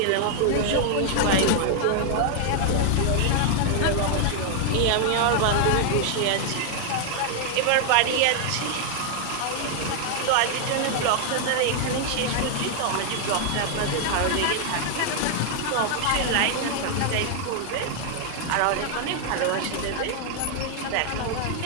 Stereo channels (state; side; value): different; both; correlation 0.00